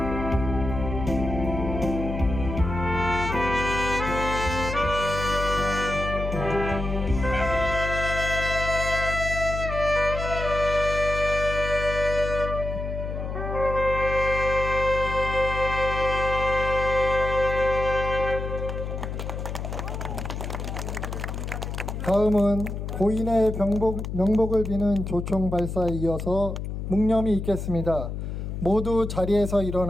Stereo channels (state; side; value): noise; left; hum, 5 dB below the sound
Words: 다음은 고인의 명복을 비는 조총 발사에 이어서 묵념이 있겠습니다. 모두 자리에서